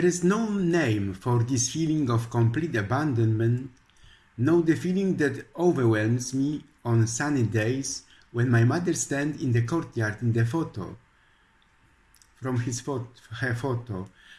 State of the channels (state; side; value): identical; both; correlation 1.00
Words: is no name for this feeling of complete abandonment, no the feeling that overwhelms me on sunny days when my mother stands in the courtyard in the photo, her photo,